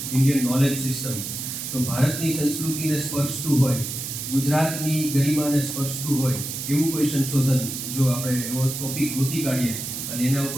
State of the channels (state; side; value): noise; right; hiss, 6 dB below the sound